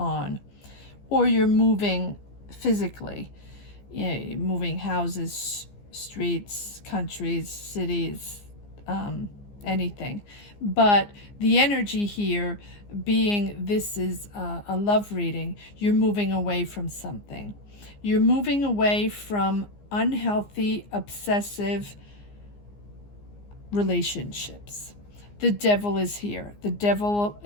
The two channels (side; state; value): right; late; 15 ms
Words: or you're moving physically, moving houses, streets, countries, cities, anything. But the energy here being this is a love reading, you're moving away from something. You're moving away from unhealthy, obsessive relationships. The Devil is here. The Devil